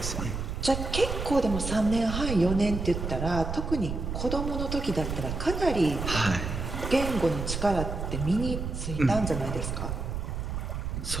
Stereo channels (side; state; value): right; noise; rumble, 4 dB below the sound